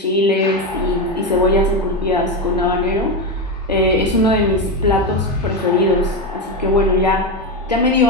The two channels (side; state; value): both; normal; correlation 0.13